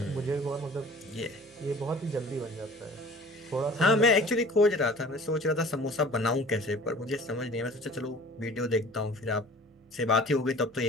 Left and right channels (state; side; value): normal; both; correlation 0.46